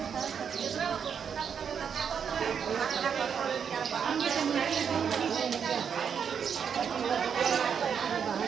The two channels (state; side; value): quieter; left; 7.2 dB